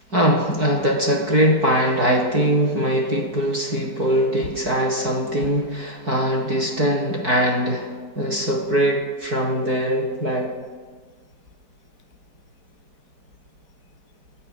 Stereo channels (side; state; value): left; late; 4.6 ms